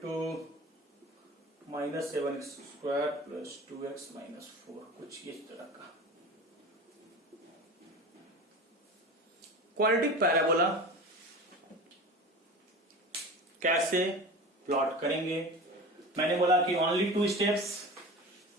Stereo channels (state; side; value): normal; both; correlation 0.33